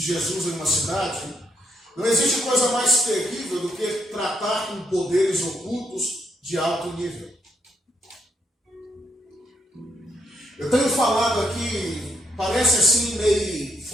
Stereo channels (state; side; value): normal; both; correlation 0.77